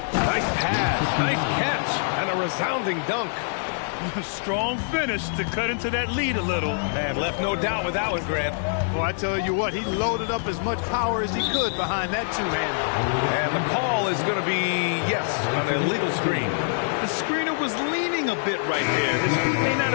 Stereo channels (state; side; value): silent; right; digital silence